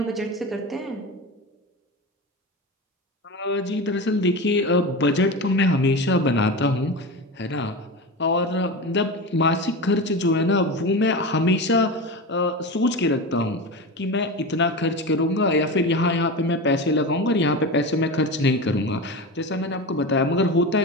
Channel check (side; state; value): both; normal; correlation 0.24